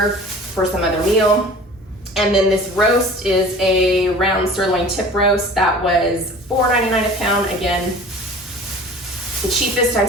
for some other meal. And then this roast is a round sirloin tip roast that was $4.99 a pound. Again, the cheapest I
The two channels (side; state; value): both; normal; correlation 0.43